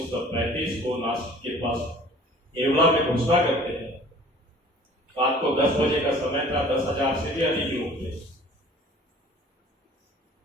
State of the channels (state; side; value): normal; both; correlation 0.49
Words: को नासिक के पास येवला में घोषणा करते हैं। रात को 10 बजे का समय था, 10,000 से भी अधिक लोग थे।